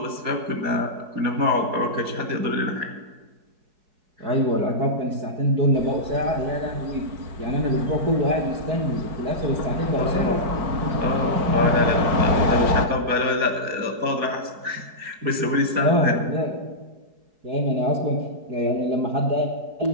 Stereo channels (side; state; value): left; late; 4.7 ms